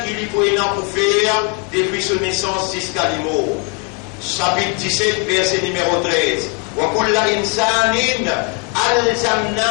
qu'il faut pour faire depuis son naissance jusqu'à l'immo. Chapitre 17, verset numéro 13. Wa kulla insanin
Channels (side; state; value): right; quieter; 31.8 dB